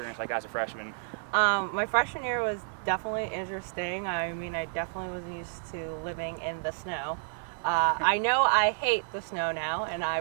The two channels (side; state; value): left; silent; 58 dB below the other